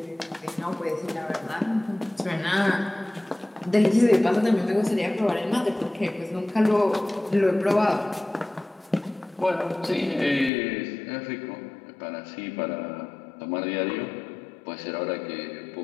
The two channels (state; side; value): drops out; right; at 10.5 s